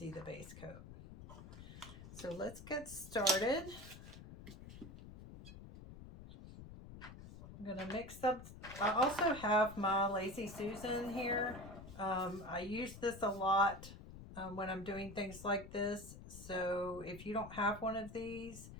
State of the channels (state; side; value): noise; left; rumble, 14 dB below the sound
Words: the base coat. So let's get started. I'm going to mix up. I also have my Lazy Susan here. I use this a lot when I'm doing things like this. So if you don't have one of these,